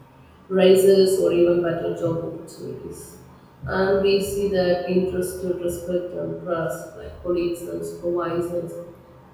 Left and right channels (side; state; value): both; identical; correlation 1.00